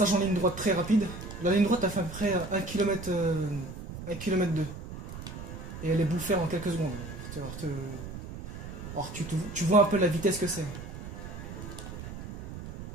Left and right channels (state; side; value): noise; right; rumble, 10 dB below the sound